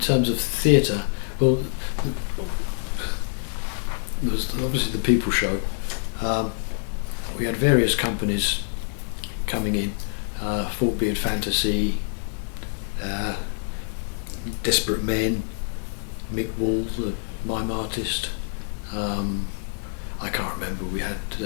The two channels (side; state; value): right; silent; digital silence